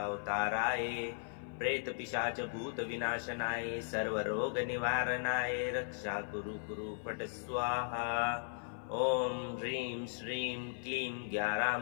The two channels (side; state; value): right; silent; 53 dB below the other